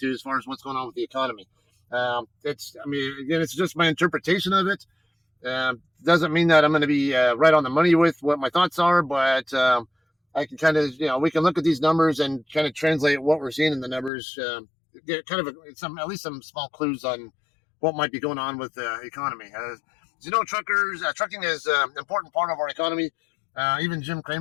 as far as what's going on with the economy. I mean, again, it's just my interpretation of it. Doesn't mean that I'm going to be right on the money with what my thoughts are, but I can kind of, we can look at these numbers and kind of translate what we're seeing in the numbers, get kind of some, at least some small clues on what might be going on with the economy. As you know, trucking is an important part of our economy. Even Jim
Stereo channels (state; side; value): drops out; right; at 14.1 s